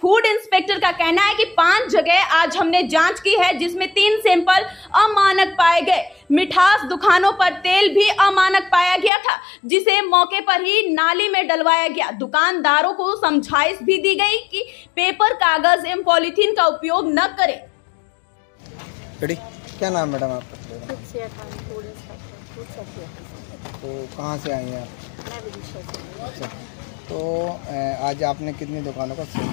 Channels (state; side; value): drops out; right; at 9.1 s